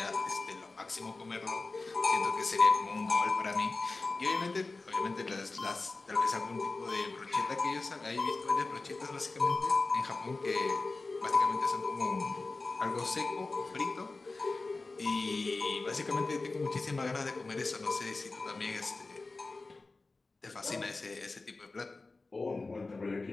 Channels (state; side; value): quieter; right; 3.5 dB